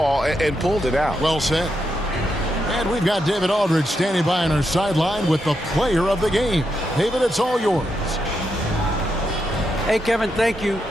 and pulled it out. Well said. And we've got David Aldridge standing by on our sideline with the player of the game. David, it's all yours. Hey, Kevin, thank you.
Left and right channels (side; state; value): both; normal; correlation 0.83